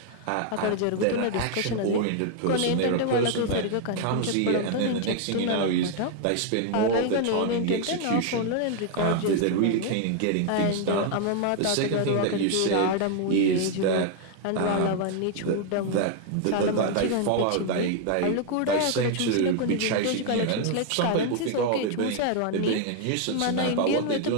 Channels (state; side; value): different; both; correlation 0.00